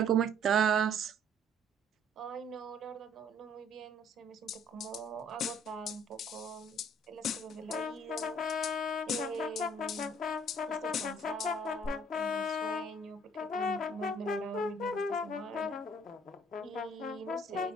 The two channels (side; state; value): both; normal; correlation 0.58